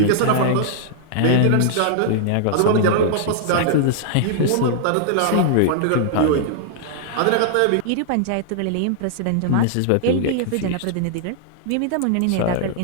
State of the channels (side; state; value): both; different; correlation -0.01